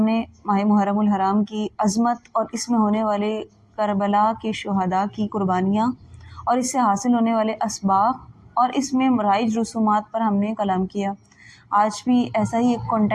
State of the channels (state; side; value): identical; both; correlation 1.00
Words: ماہ محرم الحرام کی عظمت اور اس میں ہونے والے کربلا کے شہداء کی قربانیاں اور اس سے حاصل ہونے والے اسباق اور اس میں رائج رسومات پر ہم نے کلام کیا۔ آج بھی ایسا ہی ایک